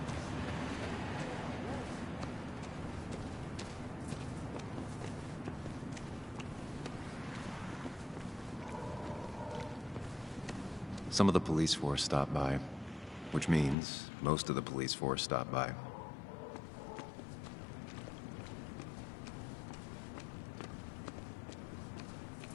Some of the police force stopped by, which means most of the police force stopped by.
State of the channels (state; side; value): drops out; right; at 13.8 s